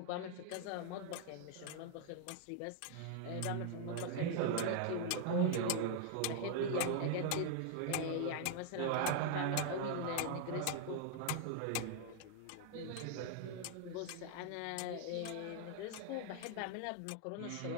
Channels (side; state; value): both; different; correlation 0.00